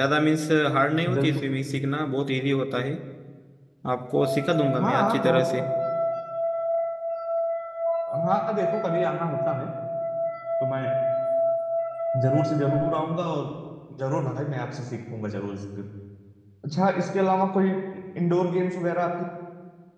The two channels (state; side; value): identical; both; correlation 1.00